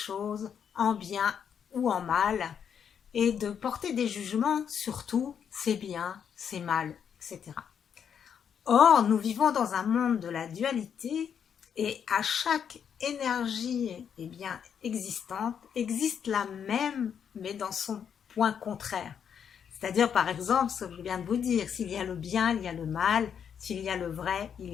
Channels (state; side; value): quieter; right; 7.9 dB